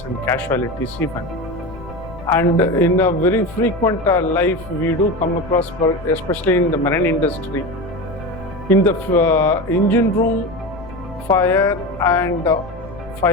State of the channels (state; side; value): noise; left; rumble, 17 dB below the sound